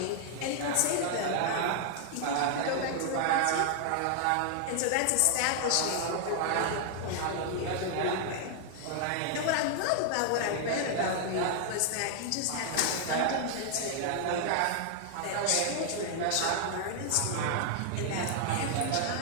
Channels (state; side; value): different; both; correlation 0.00